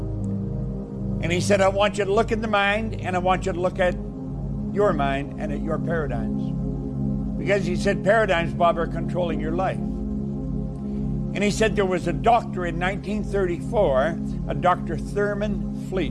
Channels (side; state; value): both; identical; correlation 1.00